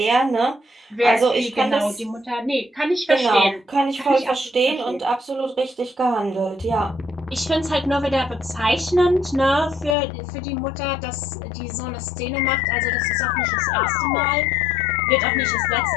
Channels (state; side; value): drops out; right; at 10.0 s